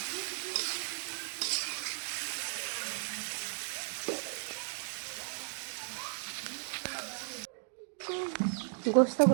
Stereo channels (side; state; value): left; silent; digital silence